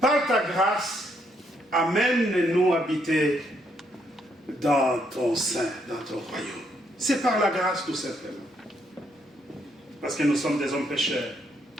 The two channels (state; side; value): normal; both; correlation 0.74